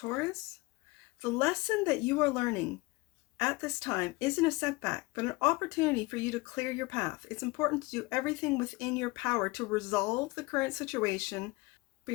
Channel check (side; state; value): right; quieter; 23.7 dB